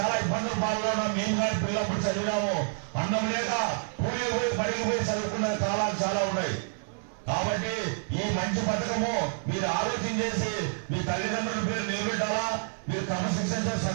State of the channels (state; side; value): silent; left; 55 dB below the other